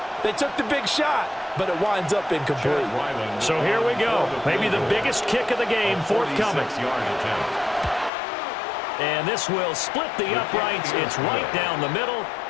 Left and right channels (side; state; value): right; drops out; at 8.1 s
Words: They took the big shot, but it winds up incomplete. So here we go. Maybe the biggest kick of the game forthcoming. And this will split the uprights. It's right down the middle.